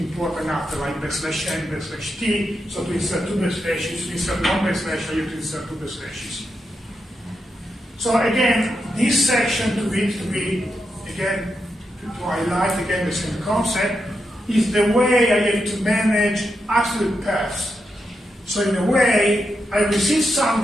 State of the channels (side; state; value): both; normal; correlation 0.85